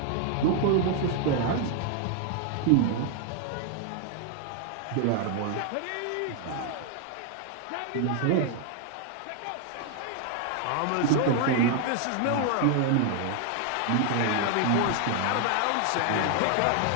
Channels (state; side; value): different; both; correlation 0.00